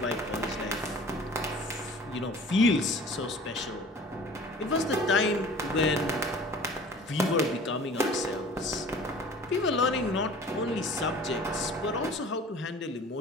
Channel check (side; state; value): both; normal; correlation 0.45